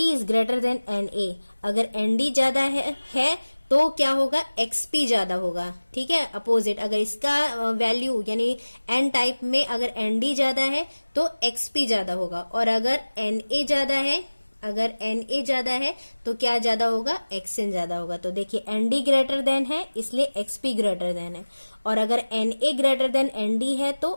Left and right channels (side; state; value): both; inverted; correlation -1.00